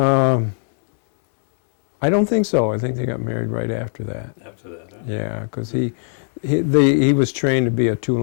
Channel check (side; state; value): right; silent; digital silence